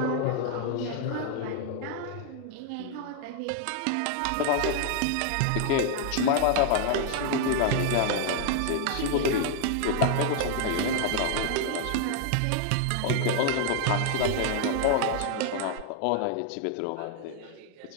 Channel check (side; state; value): both; different; correlation 0.00